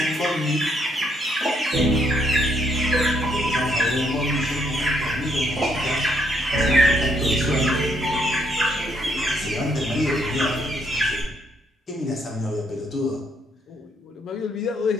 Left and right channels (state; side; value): normal; both; correlation 0.72